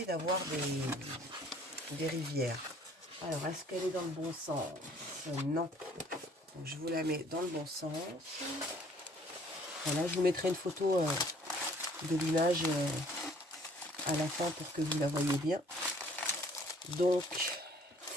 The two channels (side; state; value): both; normal; correlation 0.57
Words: d'avoir des rivières. Alors, est-ce qu'elle est dans le bon sens? Non. Donc, je vous la mets dans le bon sens. Voilà, je vous mettrai une photo de l'image à la fin pour que vous la voyez bien. Donc,